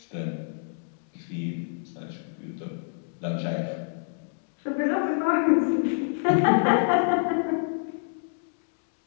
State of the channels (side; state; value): right; silent; digital silence